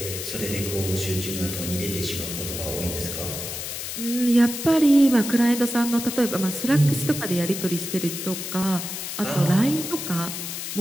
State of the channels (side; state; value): left; noise; hiss, 6 dB below the sound